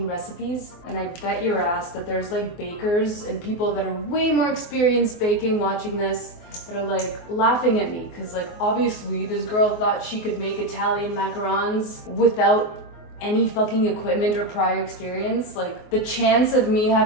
recipes. And I bet your ass that there's like bakers and people that are way more experienced baking watching this that are like laughing at me. Cause like obviously this girl thought she could make Italian macarons without any fucking equipment or prior experience. Like the chance of me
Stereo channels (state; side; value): late; right; 24 ms